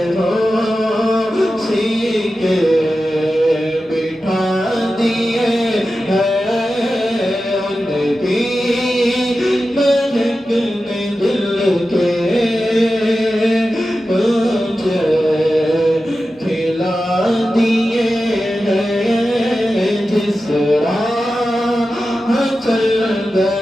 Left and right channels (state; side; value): normal; both; correlation 0.93